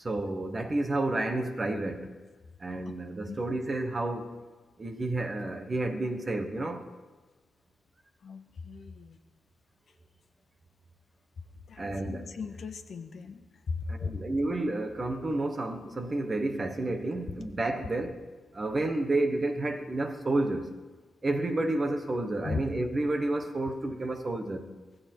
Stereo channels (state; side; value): normal; both; correlation 0.91